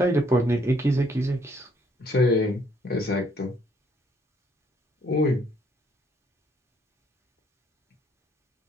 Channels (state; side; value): normal; both; correlation 0.66